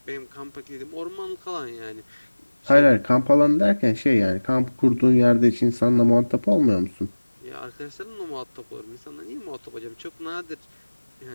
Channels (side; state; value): both; inverted; correlation -1.00